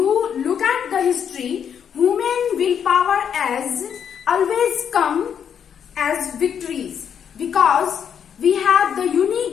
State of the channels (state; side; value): quieter; right; 8.1 dB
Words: look at the history, human willpower has always come as victories because we have the